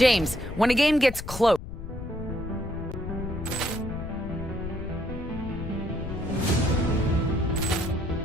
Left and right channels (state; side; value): noise; left; rumble, 9 dB below the sound